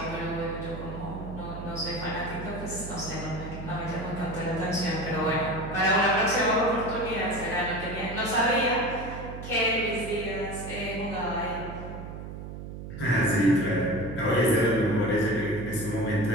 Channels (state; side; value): noise; right; hum, 9 dB below the sound